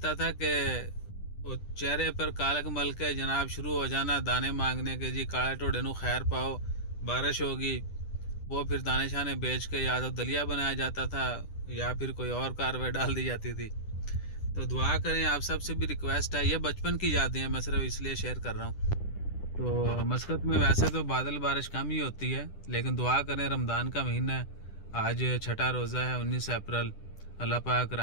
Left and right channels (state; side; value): late; right; 10 ms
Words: था कि वो चेहरे पर कालक मल के जनाब शुरू हो जाना दाने मांगने के, जी काले टोडे नू खैर पाओ, बारिश होगी। वो फिर दाने शाने बेच के या तो दलिया बनाया जाता था या फिर कोई और कार्रवाई डाल दी जाती थी। तो दुआ करें, आप सबसे भी रिक्वेस्ट है, ये बचपन की यादें हैं, मैं सिर्फ इसलिए शेयर कर रहा हूँ। तो मस्कत में वैसे तो बादल बारिश कम ही होती है, लेकिन दुआ करें, रमज़ान का महीना है, आज छठा रोज़ा है, 19 अप्रैल, अल्लाह पाक